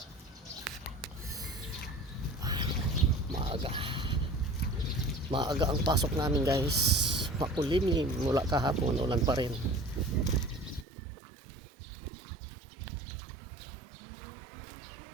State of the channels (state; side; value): drops out; left; at 10.9 s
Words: Maaga. Maaga ang pasok namin guys. Makulimlim mula kahapon, ulan pa rin.